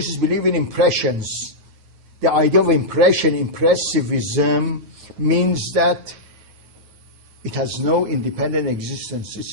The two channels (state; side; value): late; left; 9.4 ms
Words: believe in impressions. The idea of impression, impressivism, means that it has no independent existence.